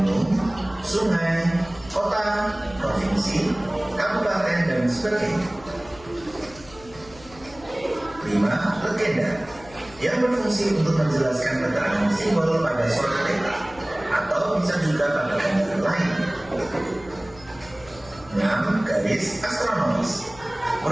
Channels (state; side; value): noise; left; hum, 21 dB below the sound